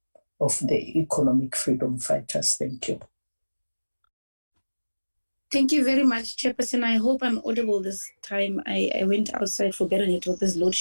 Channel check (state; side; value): inverted; both; correlation -1.00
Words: of the Economic Freedom Fighters. Thank you. Thank you very much, Chairperson. I hope I'm audible this time. I went outside for better network. There's load